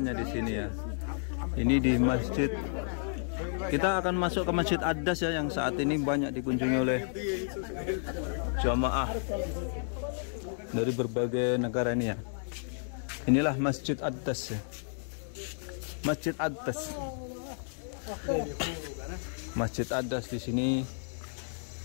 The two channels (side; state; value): right; silent; digital silence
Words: di sini ya. Ini di masjid. Kita akan masuk ke Masjid Adas ya, yang saat ini banyak dikunjungi oleh jamaah dari berbagai negara ini ya. Inilah Masjid Adas ya. Masjid Adas. Masjid Adas di sini